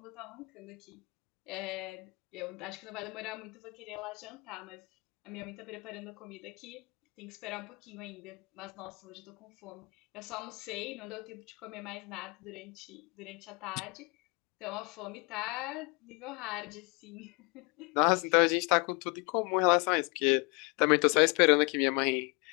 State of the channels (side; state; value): right; quieter; 30.1 dB